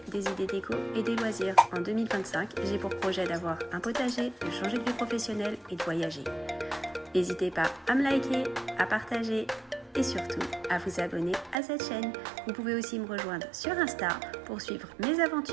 des idées déco et des loisirs. En 2025, j'ai pour projet d'avoir un potager, de changer de vie professionnelle et de voyager. N'hésitez pas à me liker, à partager et surtout à vous abonner à cette chaîne. Vous pouvez aussi me rejoindre sur Insta pour suivre mes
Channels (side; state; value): left; drops out; at 11.6 s